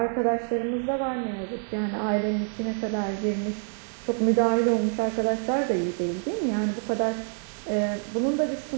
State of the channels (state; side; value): silent; left; 58 dB below the other